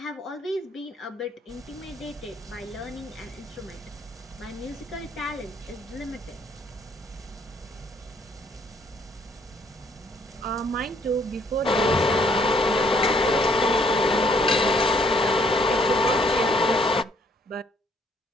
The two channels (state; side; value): normal; both; correlation 0.66